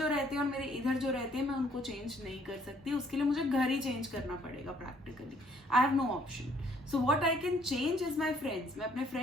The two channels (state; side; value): normal; both; correlation 0.63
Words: रहते हैं और मेरे इधर जो रहते हैं, मैं उनको चेंज नहीं कर सकती, उसके लिए मुझे घर ही चेंज करना पड़ेगा practically. I have no option. So what I can change is my friends. मैं अपने